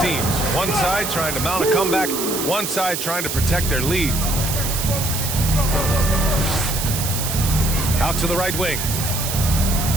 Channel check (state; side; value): noise; right; hiss, 3 dB below the sound